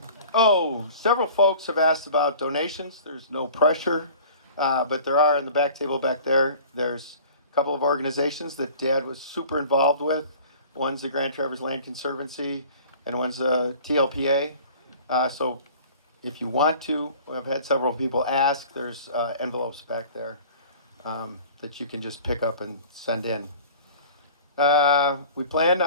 Several folks have asked about donations. There's no pressure, but there are in the back table back there. There's a couple of organizations that Dad was super involved with. One's the Grand Traverse Land Conservancy, and one's TLPA. So if you want to, I've had several people ask. There's envelopes back there that you can just pick up and send in. We plan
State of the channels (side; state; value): both; inverted; correlation -0.45